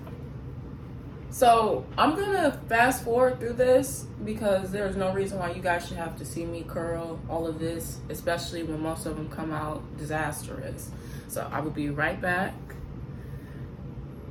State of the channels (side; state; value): both; identical; correlation 1.00